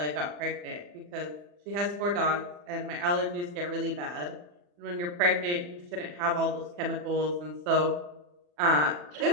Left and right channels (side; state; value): left; late; 40 ms